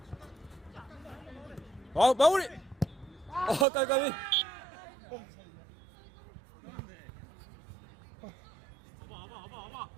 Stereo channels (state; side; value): drops out; left; at 3.7 s